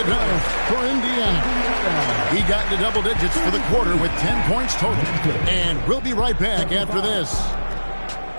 done for Indiana. He got into double digits for the quarter with 10 points total. And we'll be right back after this.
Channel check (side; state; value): both; inverted; correlation -1.00